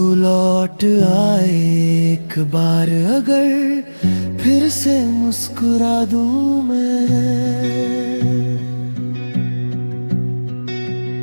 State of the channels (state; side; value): inverted; both; correlation -1.00